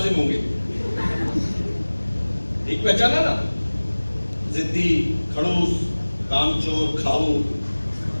होंगे, ठीक पहचाना ना? जिद्दी, खड़ूस, कामचोर, खाऊ,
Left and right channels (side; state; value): both; inverted; correlation -1.00